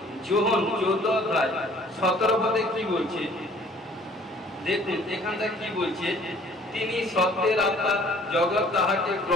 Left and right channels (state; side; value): normal; both; correlation 0.55